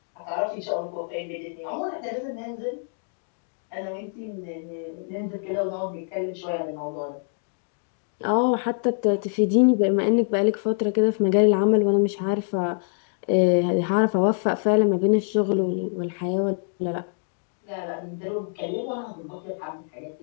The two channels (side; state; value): right; silent; 62 dB below the other